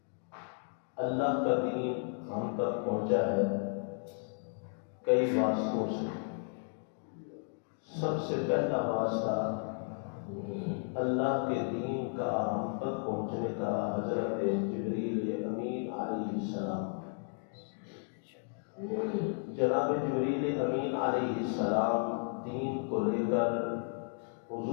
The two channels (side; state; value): right; silent; 55 dB below the other